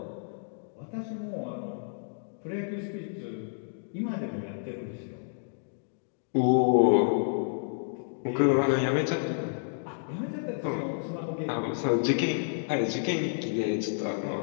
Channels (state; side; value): silent; right; digital silence